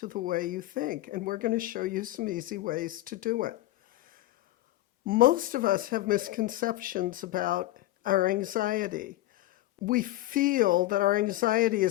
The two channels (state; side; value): quieter; right; 16.4 dB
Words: the way you think. And we're going to show you some easy ways to do it. Most of us have misconceptions about our anxiety. We feel that our anxiety